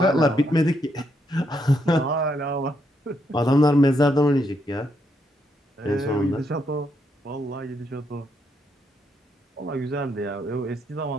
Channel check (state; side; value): normal; both; correlation 0.77